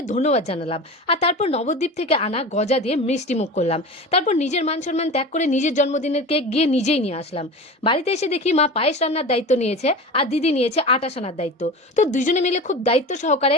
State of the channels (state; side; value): normal; both; correlation 0.31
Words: ধন্যবাদ জানালাম। আর তারপর নবদ্বীপ থেকে আনা গজা দিয়ে মিষ্টিমুখ করলাম। তারপর নিজের মান-সম্মান ত্যাগ করে নিজের জন্মদিনের কেক গিয়ে নিজেই নিয়ে আসলাম। বাড়িতে এসে দেখি মা পায়েস রান্নার দায়িত্ব নিয়েছে আর দিদি নিয়েছে আটা সানার দায়িত্ব। তো দুজনে মিলে খুব দায়িত্ব সহকারে